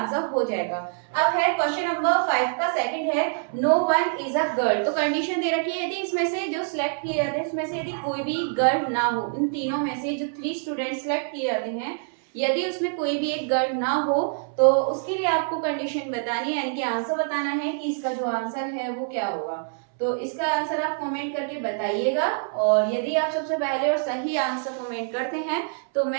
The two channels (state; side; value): silent; left; 61 dB below the other